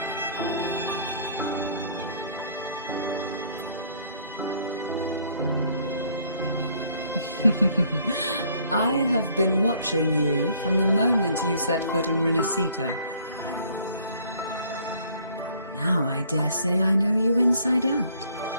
I have been watching you from the moment you set foot in Renacita. Now I dare say I know you inside out.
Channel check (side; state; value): both; inverted; correlation -0.61